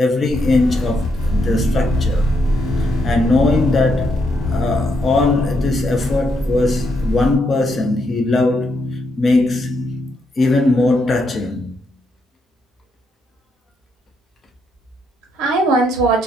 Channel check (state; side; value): normal; both; correlation 0.78